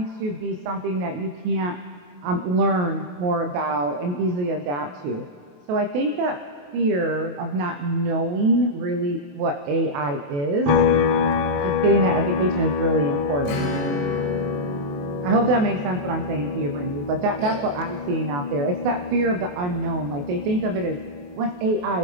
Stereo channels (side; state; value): left; late; 28 ms